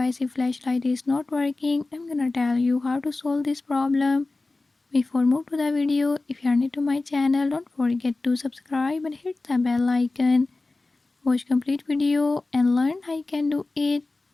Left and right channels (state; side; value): quieter; right; 3.3 dB